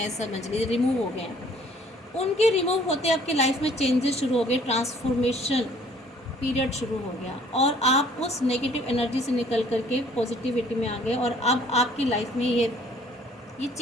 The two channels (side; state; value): both; normal; correlation 0.58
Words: समझ लीजिए रिमूव हो गए हैं। उनके रिमूव होते आपकी लाइफ में चेंजेस शुरू हो गए, ट्रांसफॉर्मेशन पीरियड शुरू हो गया, और आप उस नेगेटिव एनर्जी से निकल करके पॉजिटिविटी में आ गए, और अब आपकी लाइफ में ये